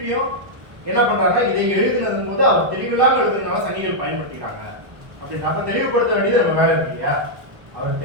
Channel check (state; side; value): late; left; 1.0 ms